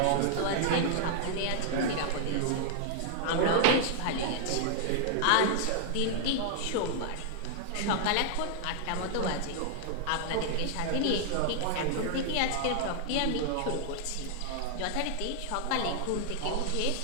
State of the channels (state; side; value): different; both; correlation -0.01